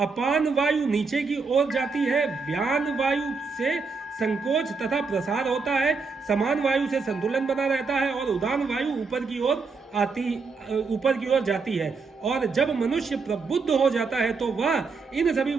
वायु नीचे की ओर जाती है, व्यान वायु से संकोच तथा प्रसार होता है, समान वायु से संतुलन बना रहता है, और उदान वायु ऊपर की ओर जाती है। और जब मनुष्य प्रबुद्ध हो जाता है तो वह इन सभी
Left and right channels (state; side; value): quieter; left; 4.6 dB